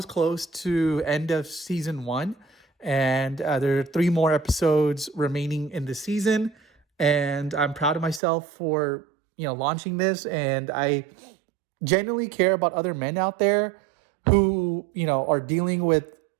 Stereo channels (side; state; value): left; drops out; at 8.2 s